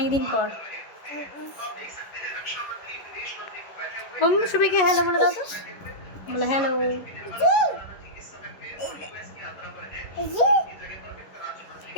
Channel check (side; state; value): right; late; 11 ms